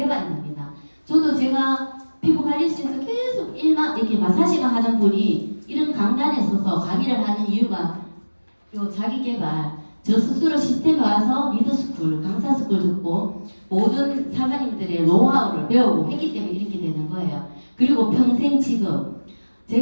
됩니다. 저도 제가 피부관리실에서 계속 일만 이렇게 마사지가 하는 분이 이런 강단에 서서 강의를 하는 이유가 요 자기 개발, 저 스스로 시스템에 와서 리더스쿨, 강사스쿨 듣고 모든 사장님들의 노하우를 배우고 했기 때문에 이렇게 되는 거예요. 그리고 평생 직업.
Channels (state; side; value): inverted; both; correlation -1.00